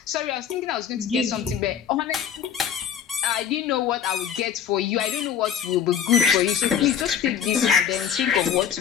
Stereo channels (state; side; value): quieter; right; 8.4 dB